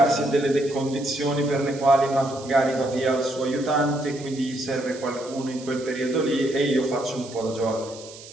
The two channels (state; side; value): noise; right; hiss, 17 dB below the sound